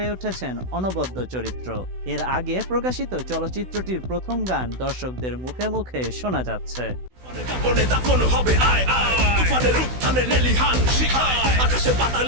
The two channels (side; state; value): left; late; 16 ms